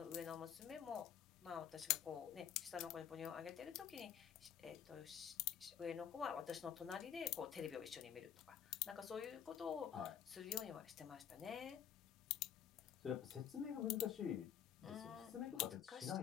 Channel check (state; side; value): quieter; right; 9.1 dB